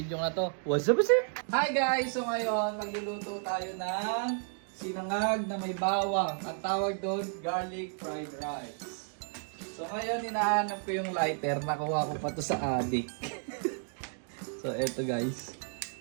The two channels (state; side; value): silent; left; 56 dB below the other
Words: na to. What's up, sir? Hi guys! So, ngayon, magluluto tayo ng sinangag na may bawang. Ang tawag doon, garlic fried rice. So, ngayon, hinahanap ko yung lighter. Nakuha ko pa to sa adik. So, eto guys.